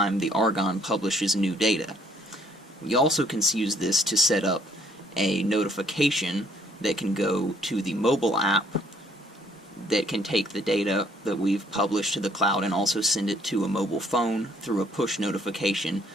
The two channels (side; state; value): both; normal; correlation 0.64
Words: the Argon publishes new data. We also can use this to set up a notification that can go to the mobile app that can take the data that we've published to the cloud and also send it to a mobile phone through a push notification,